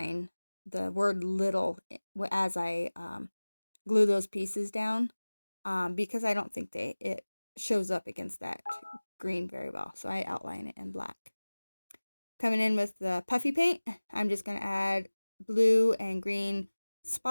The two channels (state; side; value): inverted; both; correlation -1.00